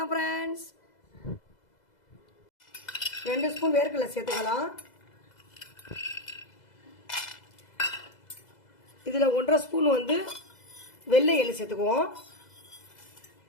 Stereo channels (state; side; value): late; right; 2.0 ms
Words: ஃப்ரெண்ட்ஸ். 2 ஸ்பூன் வேர்க்கடலை சேர்த்துக்கலாம். இதில் 1.5 ஸ்பூன் வெள்ளை எள்ளு சேர்த்துக்குவோம்.